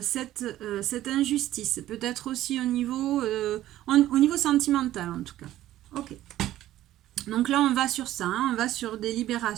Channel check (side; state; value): left; quieter; 13.9 dB